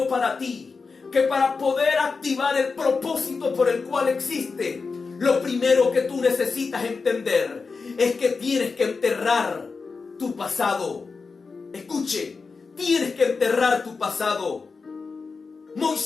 para ti, que para poder activar el propósito por el cual existe, lo primero que tú necesitas entender es que tienes que enterrar tu pasado. Escuche, tienes que enterrar tu pasado.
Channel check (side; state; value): right; quieter; 4.6 dB